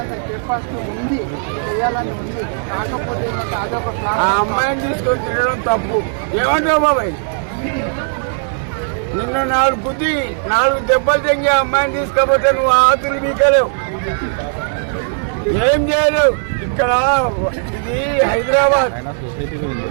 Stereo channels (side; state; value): left; silent; digital silence